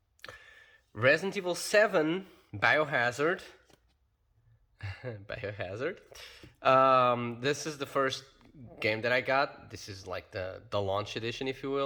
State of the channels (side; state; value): both; identical; correlation 1.00